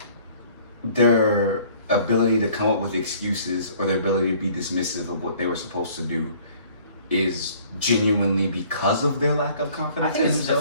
their ability to come up with excuses or their ability to be dismissive of what they were supposed to do is genuinely because of their lack of I confidence think in it's a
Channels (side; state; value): both; inverted; correlation -0.55